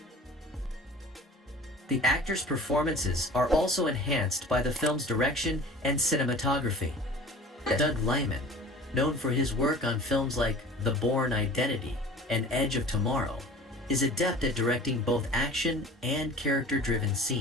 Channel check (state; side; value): normal; both; correlation 0.42